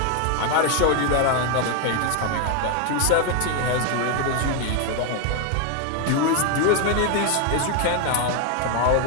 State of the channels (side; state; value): both; different; correlation 0.01